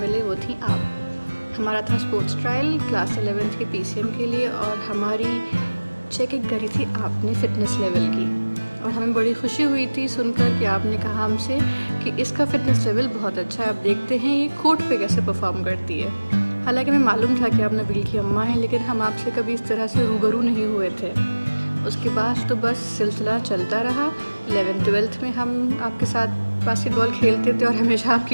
मिले वो थी आप। हमारा था स्पोर्ट्स ट्रायल क्लास 11th के PCM के लिए और हमारी चेकिंग करी थी आपने फ़िटनेस लेवल की और हमें बड़ी खुशी हुई थी सुनकर कि आपने कहा हमसे कि इसका फ़िटनेस लेवल बहुत अच्छा है, आप देखते हैं ये कोर्ट पे कैसे परफॉर्म करती है। हालांकि हमें मालूम था कि आप नबील की अम्मा हैं, लेकिन हम आपसे कभी इस तरह से रूबरू नहीं हुए थे। उसके बाद तो बस सिलसिला चलता रहा। 11th-12th में हम आपके साथ बास्केटबॉल खेलते थे और हमेशा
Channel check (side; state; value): both; inverted; correlation -1.00